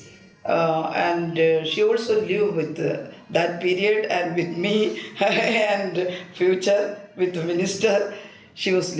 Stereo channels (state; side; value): identical; both; correlation 1.00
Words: and she also lived with that period and with me and future with the minister she was